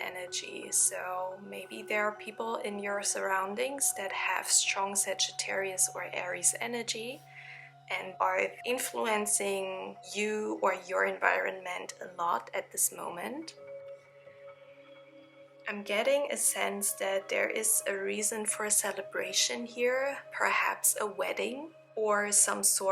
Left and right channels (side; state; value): both; identical; correlation 1.00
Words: So maybe there are people in your surroundings that have strong Sagittarius or Aries energy and are influencing you or your environment a lot at this moment. I'm getting a sense that there is a reason for a celebration here, perhaps a wedding or some